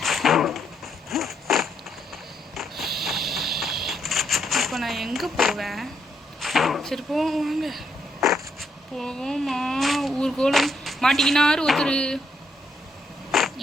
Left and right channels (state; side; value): normal; both; correlation 0.76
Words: இப்போ நான் எங்கே போவேன்? சரி போவோம், வாங்க போவோமா. ஊர்கோலம் மாட்டிக்கினாரு ஒருத்தர்.